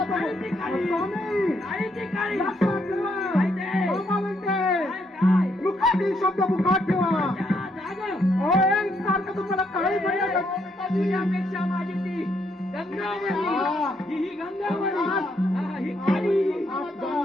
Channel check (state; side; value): normal; both; correlation 0.74